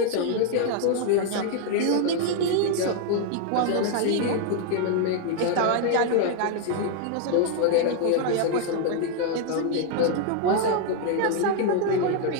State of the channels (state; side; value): different; both; correlation 0.00